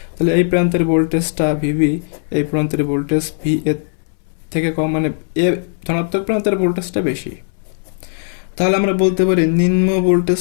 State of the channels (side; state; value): right; silent; 66 dB below the other